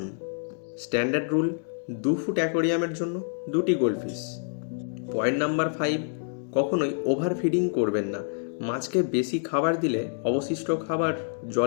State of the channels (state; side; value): silent; right; digital silence